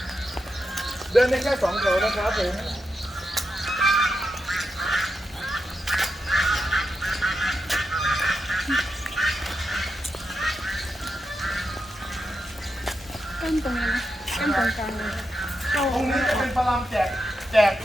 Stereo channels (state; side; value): normal; both; correlation 0.87